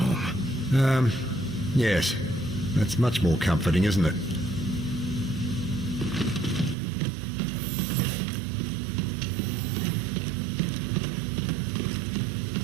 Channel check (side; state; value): left; drops out; at 6.8 s